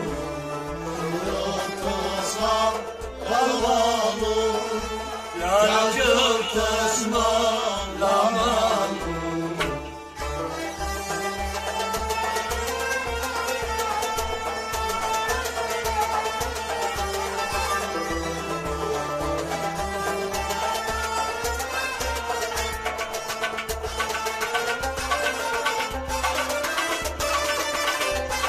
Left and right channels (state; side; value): identical; both; correlation 1.00